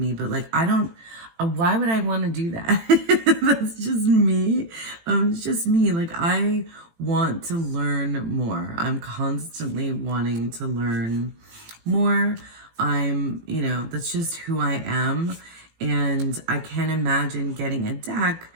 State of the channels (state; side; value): late; left; 18 ms